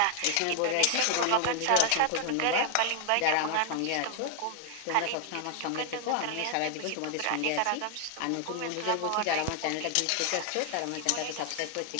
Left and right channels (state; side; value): different; both; correlation 0.00